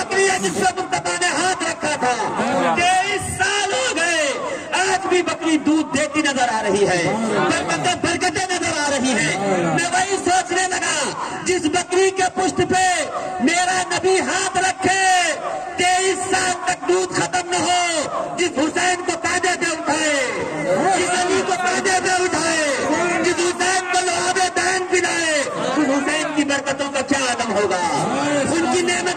ہے جس پر مصطفیٰ نے ہاتھ رکھا تھا. 23 سال ہو گئے, آج بھی بکری دودھ دیتی نظر آ رہی ہے, برکتیں نظر آ رہی ہیں. میں وہی سوچنے لگا جس بکری کے پشت پہ میرا نبی ہاتھ رکھے 23 سال تک دودھ ختم نہ ہو, جس حسین کو کاندھے پہ اٹھائے, جس علی کو کاندھے پہ اٹھائے, جس حسین کو لعاب دین پلائے, اس حسین کی برکتوں کا کیا عالم ہوگا, ان کی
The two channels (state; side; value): identical; both; correlation 1.00